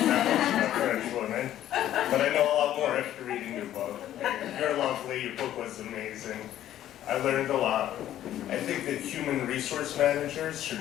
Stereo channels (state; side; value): quieter; right; 12.2 dB